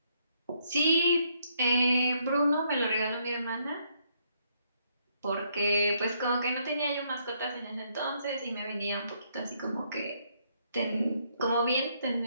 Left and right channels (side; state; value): both; inverted; correlation -0.72